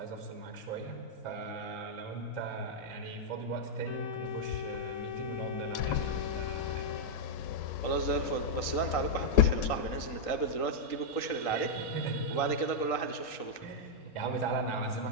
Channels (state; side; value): late; right; 3.8 ms